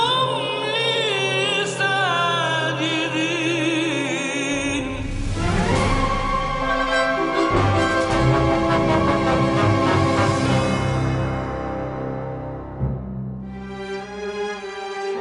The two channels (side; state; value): both; identical; correlation 1.00